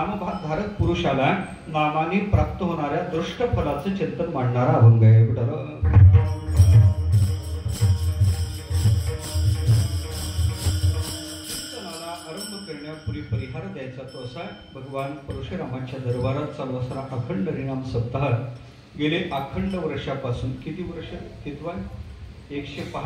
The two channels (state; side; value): identical; both; correlation 1.00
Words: पुरुषाला नामाने प्राप्त होणाऱ्या दृष्ट फलाचं चिंतन मांडणारा अभंग आहे। करण्यापूर्वी परिहार द्यायचा तो असा भगवान परशुरामाच्या दरबारात चालू असणारा अखंड हरिनाम सप्ताह गेले अखंड वर्षापासून किती वर्ष कितवा